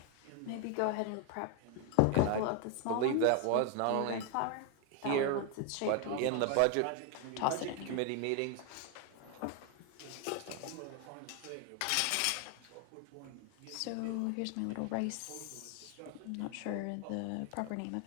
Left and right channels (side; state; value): both; different; correlation 0.01